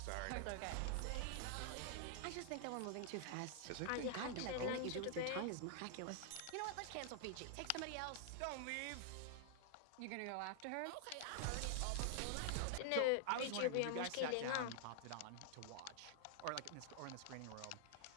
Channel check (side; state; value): both; different; correlation 0.00